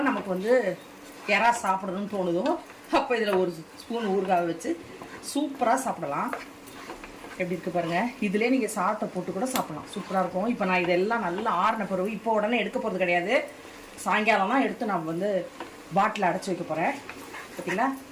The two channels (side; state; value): both; identical; correlation 1.00